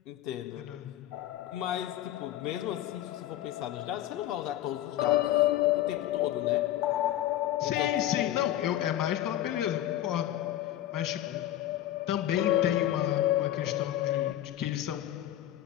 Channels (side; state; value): right; quieter; 12.9 dB